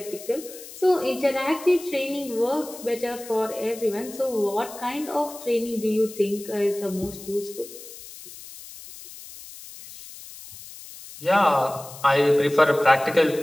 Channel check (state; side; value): noise; left; hiss, 16 dB below the sound